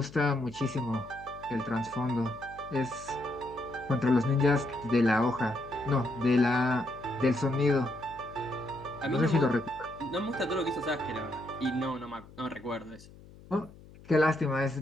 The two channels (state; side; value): noise; left; hum, 21 dB below the sound